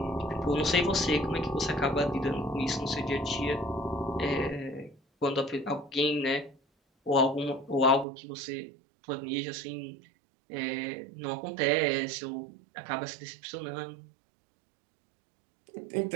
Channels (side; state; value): left; drops out; at 8.1 s